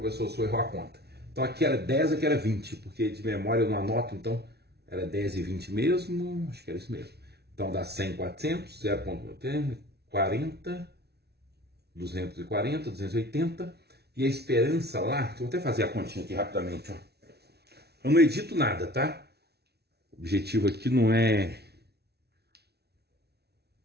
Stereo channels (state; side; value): late; left; 0.48 ms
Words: se eu errou a conta. Então aqui era 10, aqui era 20, porque de memória eu não anoto, então era 10 e 20 mesmo, acho que era isso mesmo. Então dá 100, 400, 0,40, 240, 280. E a esperança lá, vou até fazer a continha aqui rapidamente, ó. Eu não edito nada, tá? O objetivo aqui não é